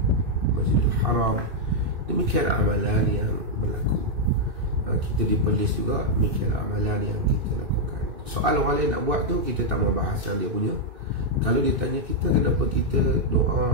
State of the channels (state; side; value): late; left; 2.6 ms